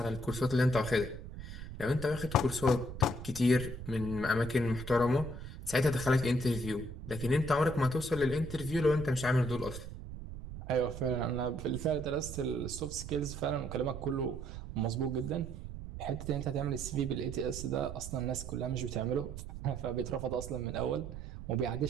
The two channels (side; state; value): right; noise; rumble, 10 dB below the sound